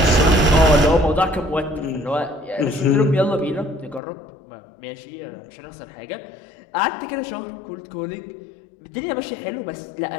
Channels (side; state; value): right; drops out; at 4.0 s